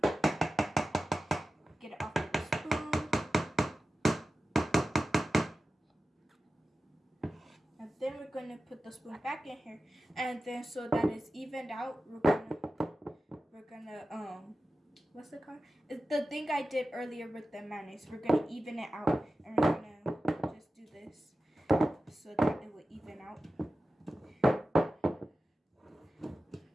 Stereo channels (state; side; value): normal; both; correlation 0.94